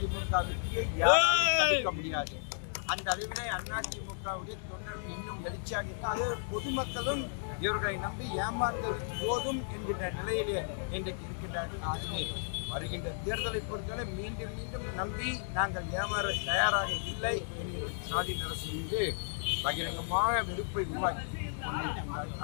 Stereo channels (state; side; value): silent; right; digital silence